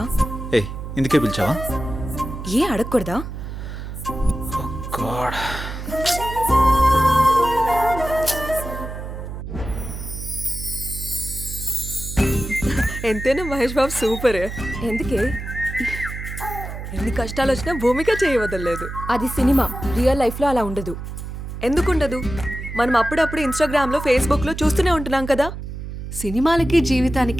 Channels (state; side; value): noise; right; hum, 8 dB below the sound